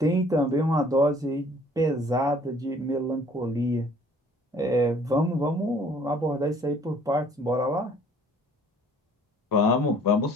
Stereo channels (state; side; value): normal; both; correlation 0.56